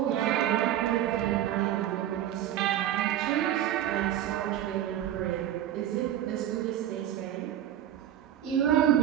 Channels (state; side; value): quieter; left; 11.6 dB